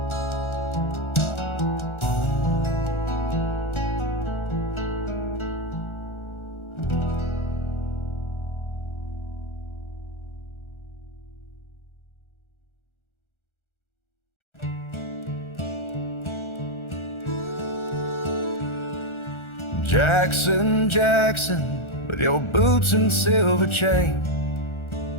Jackson, Jackson, with your boots and silver chain,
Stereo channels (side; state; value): right; late; 1.4 ms